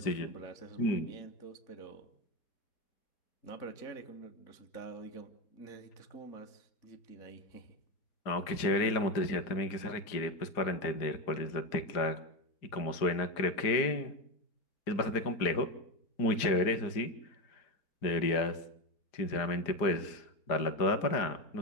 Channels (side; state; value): right; late; 4.9 ms